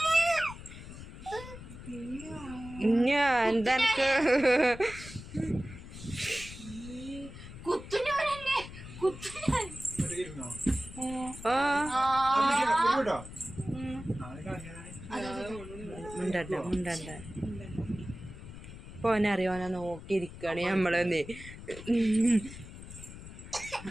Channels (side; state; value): left; noise; rumble, 13 dB below the sound